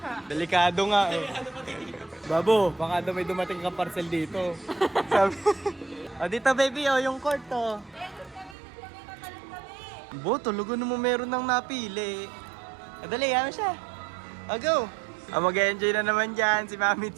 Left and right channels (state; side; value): drops out; left; at 8.6 s